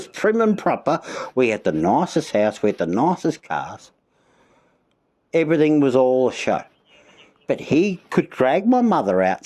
prim and proper. We had the nicest house, we had the nicest cars. Everything was all a show. But he could drag my mother out,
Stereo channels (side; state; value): both; identical; correlation 1.00